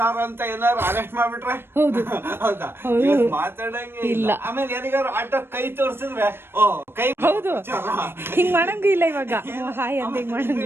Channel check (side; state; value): left; late; 0.11 ms